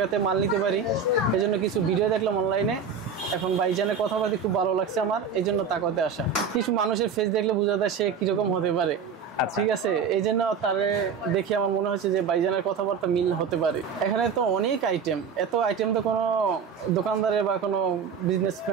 মাল নিতে পারি এজন্য কিছু ভিডিও দেখলাম অনলাইনে। এখন ভাইজানের কথাবার্তা খুব ভালো লাগছে আমার, এই জন্য তাকাতে আসা। কিছু মানুষের ফেস দেখলে বোঝা যায় সে কিরকম হতে পারে। ঠিক আছে, এই জন্য তারে দেখে আমার মনে হচ্ছে যে ভাইজানের কথাবার্তা মিল হতে পারে। এখানে তো অনেক আইটেম, এত আইটেম তো কোনো দোকানদারের বা কোনো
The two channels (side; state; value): left; quieter; 6.1 dB